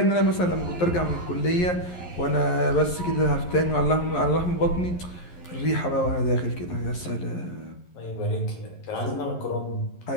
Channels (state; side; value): late; right; 11 ms